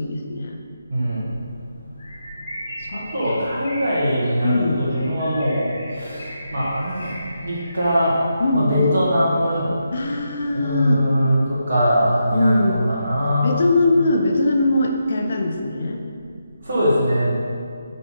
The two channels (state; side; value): inverted; both; correlation -0.83